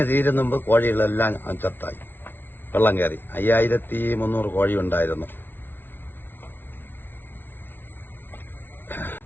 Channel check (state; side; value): late; right; 0.10 ms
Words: തീരുന്ന മുമ്പ് കോഴികളെല്ലാം ചത്തായി. വെള്ളം കയറി 5300 കോഴി ഉണ്ടായിരുന്നു.